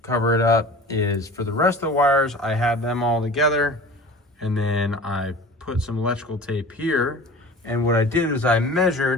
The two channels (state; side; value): normal; both; correlation 0.39